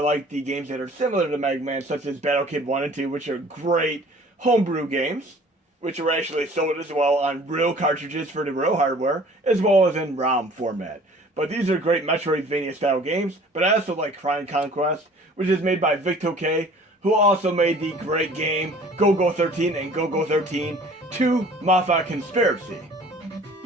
like the games that are similar to Mega Man, such as Battle Kid 1 and 2, which are great homebrew games, which are actually sold as well on real cartridges for the real hardware, as well as in ROM format. But these are great Metroidvania-style games, but I also like Crown Conquest, which is made by Victoke, who also made the great game Go-Go 13 and Go-Go 13 2 Mafia Conspiracy.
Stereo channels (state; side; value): normal; both; correlation 0.50